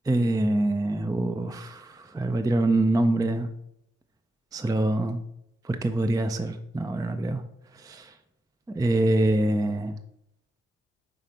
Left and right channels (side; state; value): both; normal; correlation 0.91